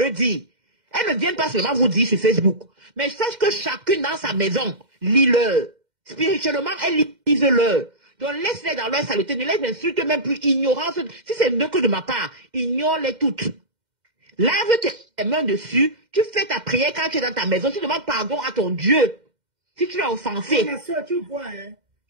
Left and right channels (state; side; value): late; left; 2.1 ms